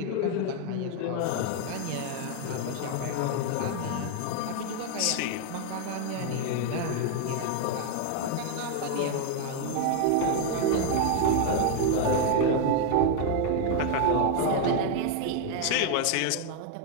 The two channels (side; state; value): both; different; correlation 0.01